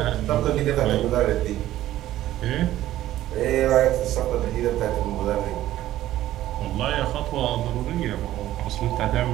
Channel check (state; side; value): quieter; left; 14.0 dB